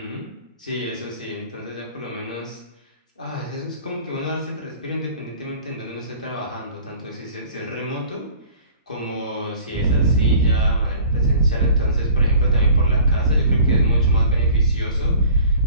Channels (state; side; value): inverted; both; correlation -0.47